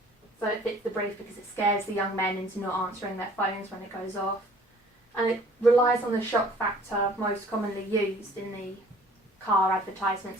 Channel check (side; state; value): both; normal; correlation 0.53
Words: So it fits the brief because it scares the young men into not answering their phones when it goes off. And it relies on the shock factor most commonly used in the car